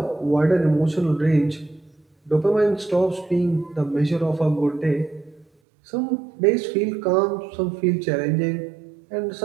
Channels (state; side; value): drops out; left; at 5.5 s